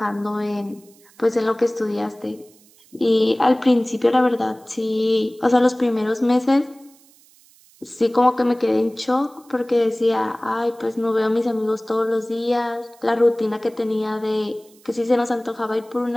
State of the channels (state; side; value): noise; right; hiss, 28 dB below the sound